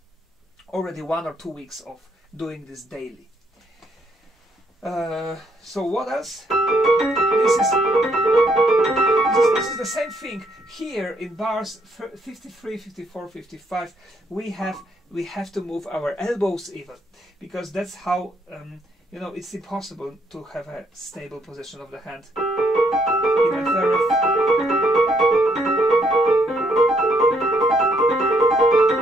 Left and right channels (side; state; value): both; normal; correlation 0.71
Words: already 1 or 2 weeks of doing this daily. So what else? This is the same thing. Here in bars 53, 54, 55, we have to move our elbows even, because that's how it's impossible to have a stable position of the hand. Even very